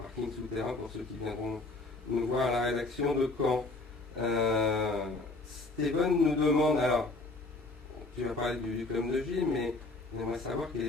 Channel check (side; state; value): right; quieter; 3.2 dB